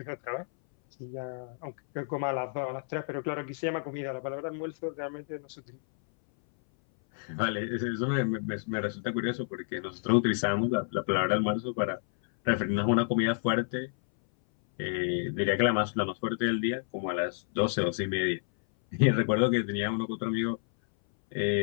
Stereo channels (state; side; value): silent; right; 58 dB below the other